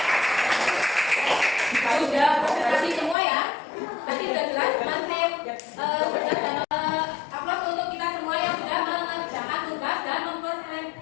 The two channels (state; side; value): drops out; right; at 3.2 s